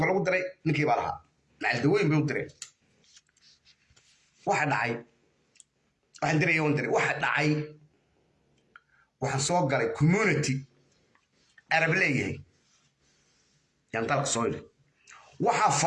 lagu diray ninkii baa lahaa macaldaweyn bay u direen waxa dhacay waxaan diraya on diray waxa dhacay waxaan soo galay community arab leeyahay yaan dalka soo yidhi waxaa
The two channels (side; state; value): both; identical; correlation 1.00